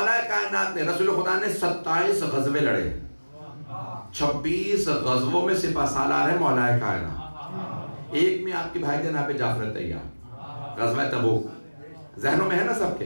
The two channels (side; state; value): both; inverted; correlation -1.00